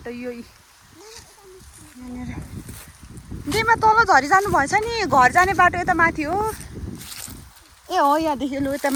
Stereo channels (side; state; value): both; identical; correlation 1.00